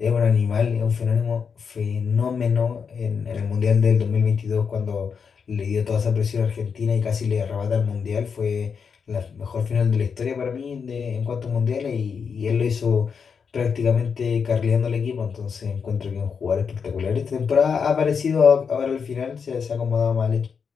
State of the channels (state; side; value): quieter; right; 6.2 dB